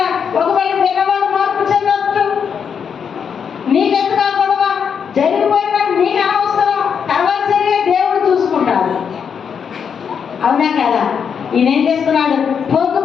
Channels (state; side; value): quieter; right; 7.0 dB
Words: ఒకవేళ పిల్లవాడు మార్పు చెందొచ్చు. నీకెందుకు ఆ గొడవ? జరిగిపోయినా నీకు అనవసరం, తర్వాత జరిగే దేవుడు చూసుకుంటాడు. అవునా కదా? ఈయన ఏం చేస్తున్నాడు?